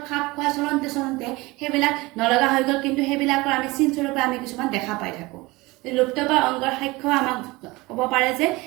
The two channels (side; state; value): left; quieter; 22.3 dB